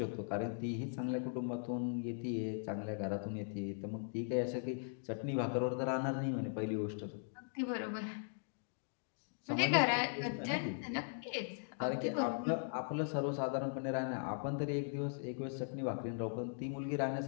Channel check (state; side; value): silent; right; digital silence